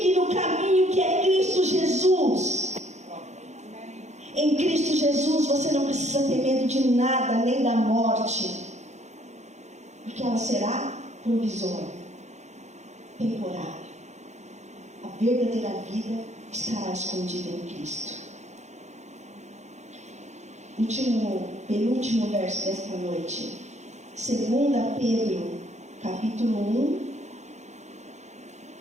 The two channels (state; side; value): late; left; 0.33 ms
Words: no caminho que é Cristo Jesus. Em Cristo Jesus você não precisa ter medo de nada, nem da morte, porque ela será provisória, temporária. A verdadeira vida estará escondida em Cristo. Penúltimo verso desta noite, 2 Pedro, capítulo 1,